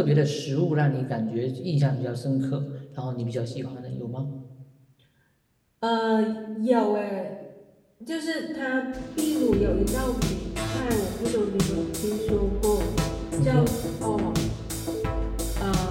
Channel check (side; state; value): both; identical; correlation 1.00